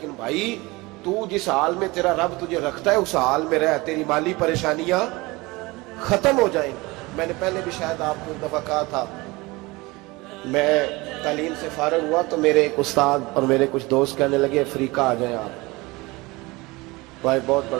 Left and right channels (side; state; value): left; quieter; 22.8 dB